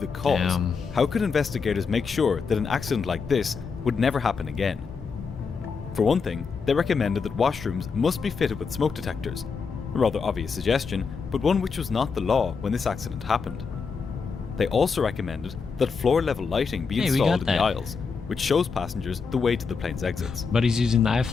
cause, how could investigators make sure that an accident like this would never happen again? For one thing, they recommended that washrooms must be fitted with smoke detectors. A rather obvious suggestion, but one which was not the law when this accident happened. They also recommended that floor-level lighting be installed in the aisles, which shows passengers the way to the plane's exits. But he's using the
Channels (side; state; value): right; quieter; 5.3 dB